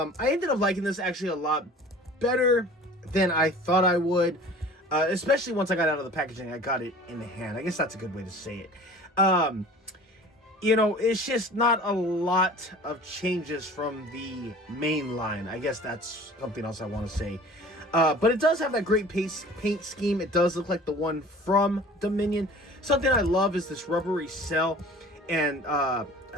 ended up liking this actually a lot better than I thought I would, especially once I got out of the packaging. I got it in the hand. I guess that's a good way to say it. You know, it's just not a lot of changes from the main line. I guess that's something else I want to say. But it does have that great paint scheme. It does look like the one from Dominion. Something I love is this rubbery cell, and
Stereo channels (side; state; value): both; normal; correlation 0.45